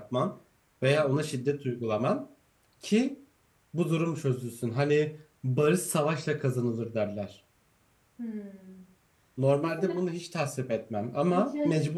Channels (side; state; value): both; identical; correlation 1.00